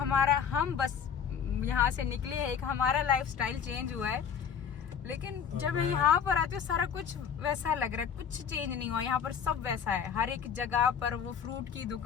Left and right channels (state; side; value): quieter; right; 7.5 dB